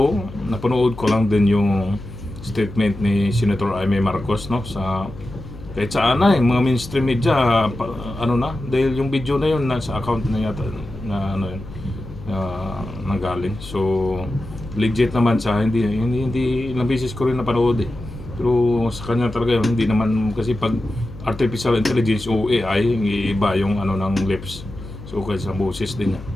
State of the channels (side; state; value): left; noise; hum, 14 dB below the sound